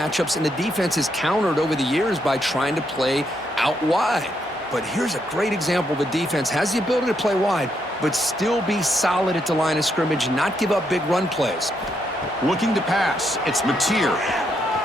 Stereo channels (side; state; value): both; normal; correlation 0.78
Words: and the defense is countered over the years by trying to play out wide. But here's a great example of a defense has the ability to play wide, but still be solid at the line of scrimmage, not give up big run plays. Looking to pass. It's Mateer.